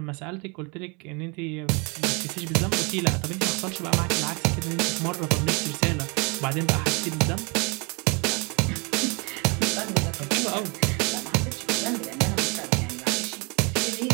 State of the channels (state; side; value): quieter; left; 30.8 dB